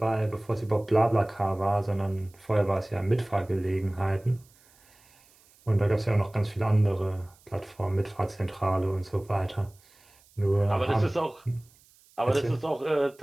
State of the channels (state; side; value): noise; right; hiss, 30 dB below the sound